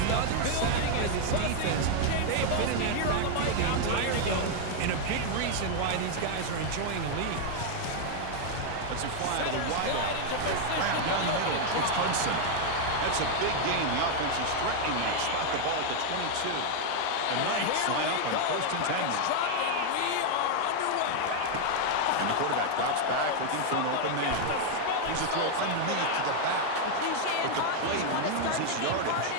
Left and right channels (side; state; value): both; different; correlation 0.00